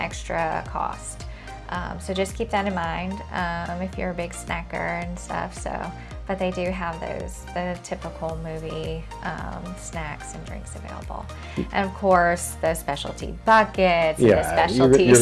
cost. So just keep that in mind if you're a big snacker and stuff. But they do have the typical movie snacks and drinks available. And of course, the specialty buckets, and the specialty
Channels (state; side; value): identical; both; correlation 1.00